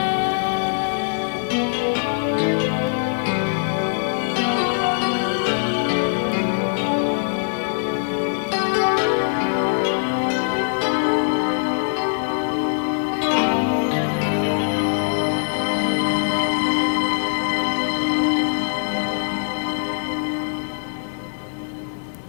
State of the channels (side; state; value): right; silent; digital silence